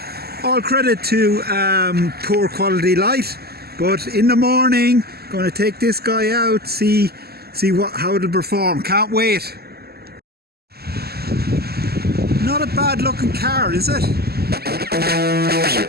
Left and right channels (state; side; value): late; left; 0.46 ms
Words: All credit to poor quality light, but in the morning, going to take this guy out, see how it'll perform. Can't wait. Not a bad looking car, is it?